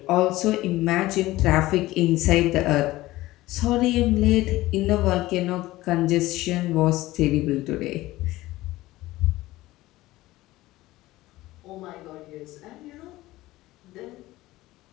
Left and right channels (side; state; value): right; quieter; 17.6 dB